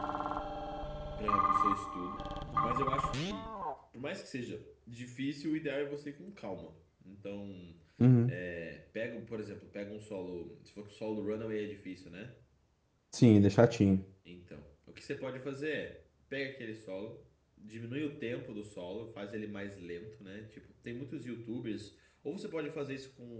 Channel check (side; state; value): both; identical; correlation 1.00